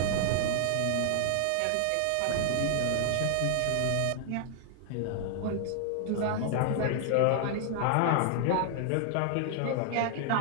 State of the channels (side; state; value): both; different; correlation 0.00